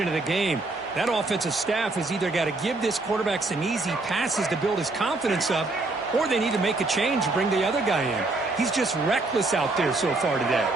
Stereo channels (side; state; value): left; quieter; 3.2 dB